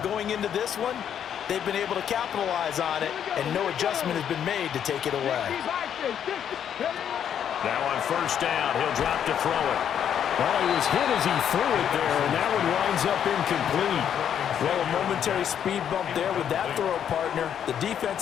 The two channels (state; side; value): quieter; right; 9.0 dB